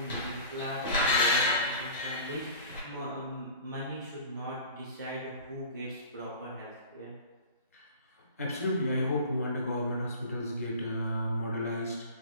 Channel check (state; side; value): inverted; both; correlation -0.40